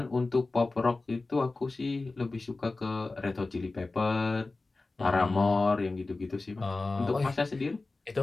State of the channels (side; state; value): right; quieter; 3.4 dB